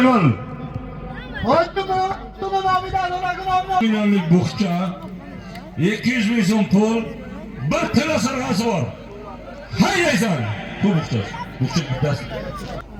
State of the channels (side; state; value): both; identical; correlation 1.00